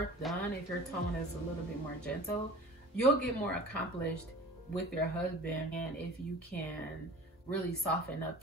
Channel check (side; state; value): both; normal; correlation 0.40